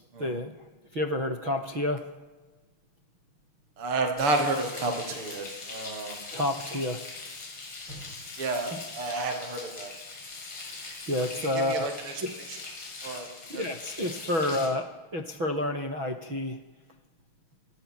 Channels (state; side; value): late; left; 6.3 ms